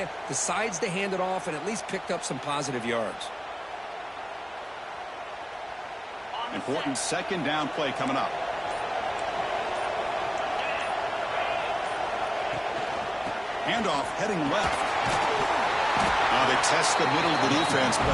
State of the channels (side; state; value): both; identical; correlation 1.00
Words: decides to hand it off and at least picked up some positive yards. Important 2nd down play coming up. Handoff heading left. Now they test the middle of the defense,